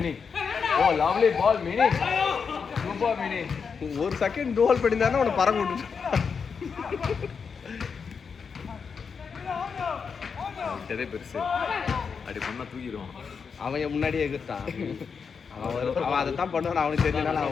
Oh lovely ball Mini. Super Mini. ஒரு செகண்ட் கோல் பண்ணியிருந்தாருன்னா உன்னை பறக்க விட்டு. இதே பெருசு அப்படி பண்ணா தூக்கிடுவான். அவன் முன்னாடியே எதிர்த்தான். அவன் அதை தான் பண்ணுவான். அவனுக்கு தெரிஞ்சனால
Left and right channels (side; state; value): right; quieter; 5.9 dB